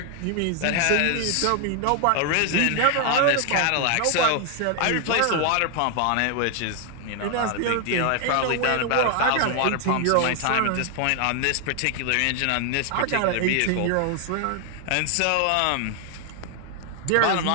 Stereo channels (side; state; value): both; different; correlation 0.00